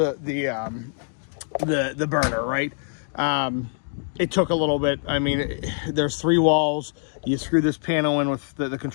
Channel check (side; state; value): right; silent; digital silence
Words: burner, right? It took a little bit. I mean, there's 3 walls. You screw this panel in with the